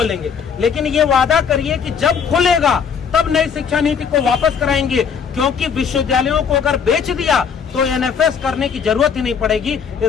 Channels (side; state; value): right; quieter; 6.7 dB